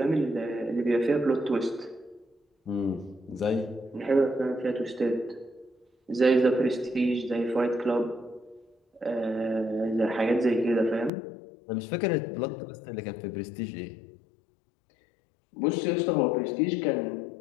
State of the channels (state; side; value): drops out; right; at 11.1 s